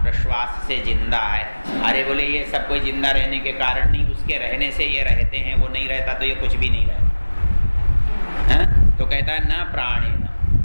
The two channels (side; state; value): both; inverted; correlation -1.00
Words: प्रश्वास से जिंदा है। अरे बोले ये सब कोई जिंदा रहने के कारण नहीं, उसके रहने से ये रहते हैं, वो नहीं रहता तो ये कुछ भी नहीं रहता है। तो कहता है न प्राणे